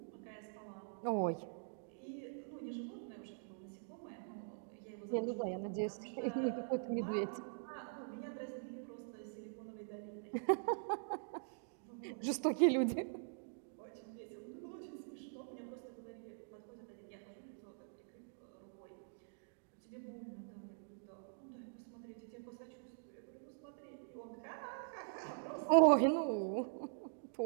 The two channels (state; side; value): silent; left; digital silence